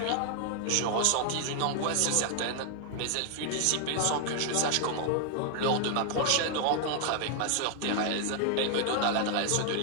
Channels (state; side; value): different; both; correlation 0.00